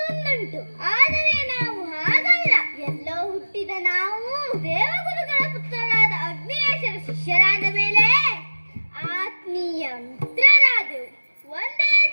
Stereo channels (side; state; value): both; inverted; correlation -1.00